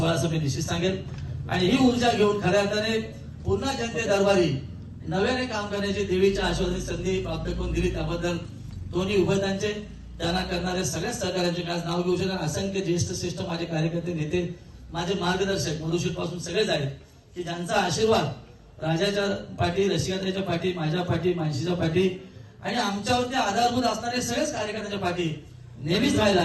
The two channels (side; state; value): both; identical; correlation 1.00